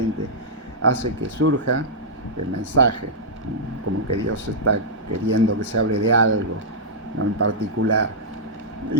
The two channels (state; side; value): normal; both; correlation -0.10